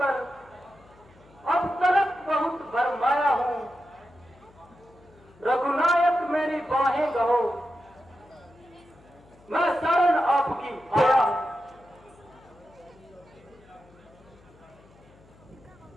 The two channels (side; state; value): left; noise; hum, 27 dB below the sound